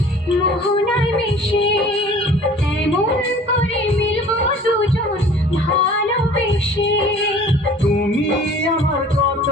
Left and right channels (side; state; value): both; normal; correlation 0.48